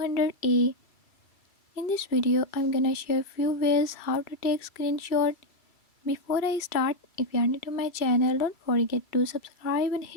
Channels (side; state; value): right; late; 2.3 ms